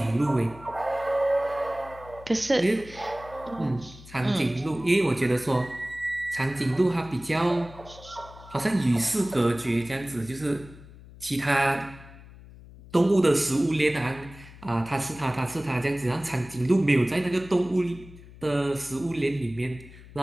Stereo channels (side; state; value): left; noise; hum, 19 dB below the sound